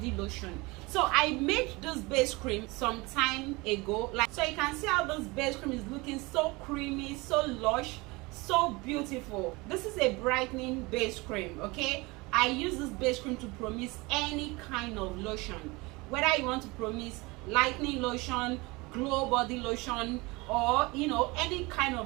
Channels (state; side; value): quieter; left; 24.2 dB